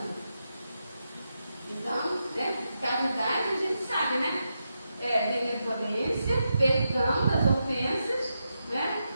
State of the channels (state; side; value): inverted; both; correlation -0.86